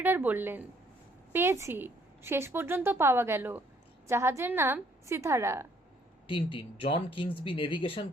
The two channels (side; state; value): both; normal; correlation 0.65